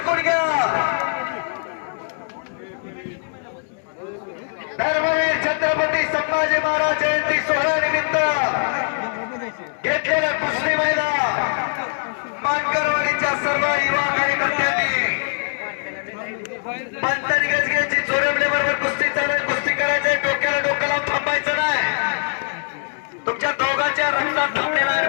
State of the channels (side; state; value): right; silent; digital silence